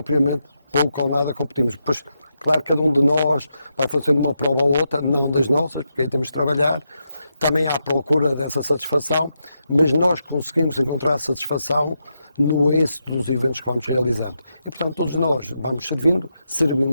pouco ou nada competimos. Pois, claro, cada um de nós vai fazendo uma prova ou outra, não das nossas, porque aí temos de trabalhar, também há a procura dessa satisfação, mas nós conseguimos encontrar a satisfação no êxito dos eventos que vamos realizando. E, portanto, todos nós vamos servindo,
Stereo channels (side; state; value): both; inverted; correlation -0.85